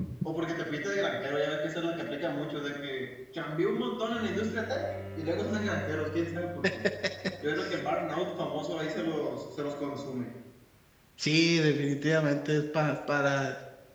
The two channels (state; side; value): identical; both; correlation 1.00